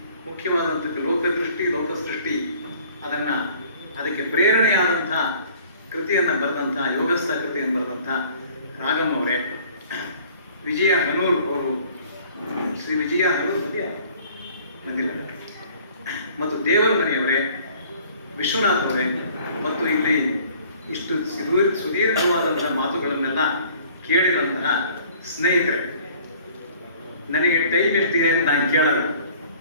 ಮುಖ್ಯವಾದಂಥ ಲೋಕದೃಷ್ಟಿ ಲೋಕಸೃಷ್ಟಿ ಅದಕ್ಕೆ ಪ್ರೇರಣೆಯಾದಂಥ ಕೃತಿಯನ್ನು ಬರೆದಂಥ ಯೋಗಸ್ಥ ಕೃತಿಯನ್ನು ಬರೆದಂಥ ರಾಗಮ್ ಅವರೇ, ವಿಜಯ ಹನೂರು ಅವರು, ಶ್ರೀ ವಿಜಯ ಹನೂರು ಬಂದಿಲ್ಲ, ಮತ್ತು ದೇವರ ಮನೆಯವರೇ, ವಿಶ್ವನಾಥ್ ಅವರೇ, ಮತ್ತು ಇಲ್ಲಿ ಇಷ್ಟು ಸುದೀರ್ಘವಾದಂತಹ ಮಾತುಗಳನ್ನೆಲ್ಲ ಕೇಳಿದಂತಹ ಸ್ನೇಹಿತರೆ, ನನಗೆ ಟೈಮ್ ಎಷ್ಟಿದೆ ಅಂತ ನಾನು ಕೇಳಲ್ಲ.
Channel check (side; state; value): both; inverted; correlation -0.53